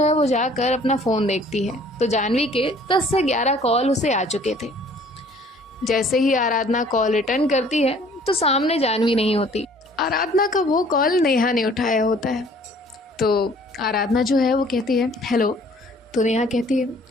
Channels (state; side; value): normal; both; correlation 0.55